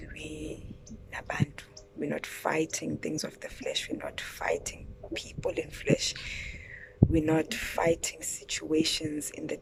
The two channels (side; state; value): both; identical; correlation 1.00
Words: nabantu. We're not fighting things of the flesh. We're not fighting people in flesh. We're not fighting situations in the